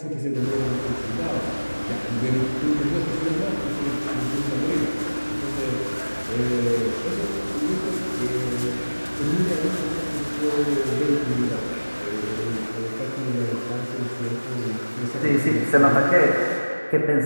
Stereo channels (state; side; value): inverted; both; correlation -1.00